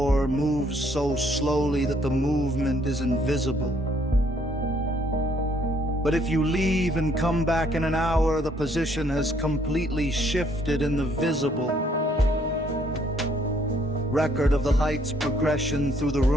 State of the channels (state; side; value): normal; both; correlation 0.66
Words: moves so slowly that the movement is invisible. But if you leave and come back in an hour, the position has completely shifted in the visible record of the light's progression through the